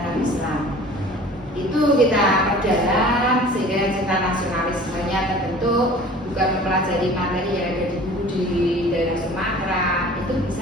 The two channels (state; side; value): normal; both; correlation 0.45